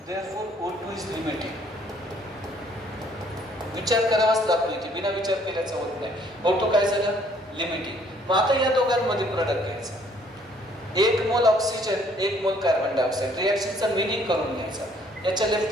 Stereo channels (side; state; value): both; normal; correlation 0.62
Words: Therefore O2 is limiting. विचार करावाच लागतो इथे, बिना विचार केल्याचं होत नाही. O2 काय झालं? लिमिटिंग. मग आता या दोघांमध्ये प्रोडक्ट घ्यायचा. 1 मोल oxygen, 1 mole carbon dioxide. रिएक्शनचा meaning करून घ्यायचा. याच्या